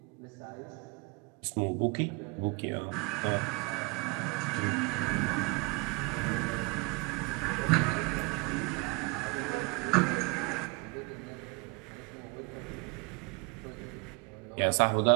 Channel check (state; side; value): quieter; left; 28.8 dB